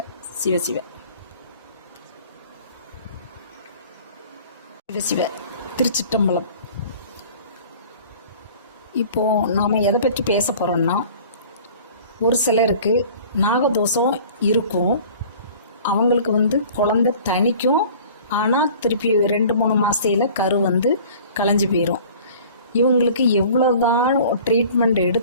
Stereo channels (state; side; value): inverted; both; correlation -0.46